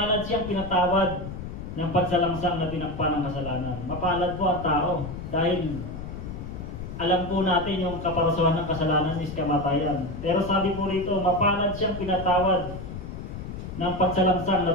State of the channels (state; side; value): noise; left; rumble, 9 dB below the sound